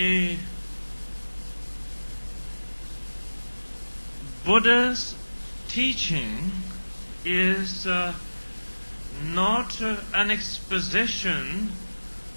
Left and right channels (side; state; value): both; inverted; correlation -1.00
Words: Buddha's teaching is not an exposition